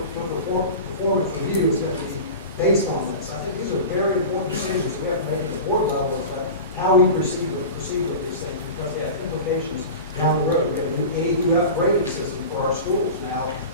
for performance review is going to be based on this. I think these are very important decisions we have to make at the board level about how we proceed with these things, because they have implications down the road. We have a new A through F grading system for our schools now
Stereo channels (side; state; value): both; inverted; correlation -0.31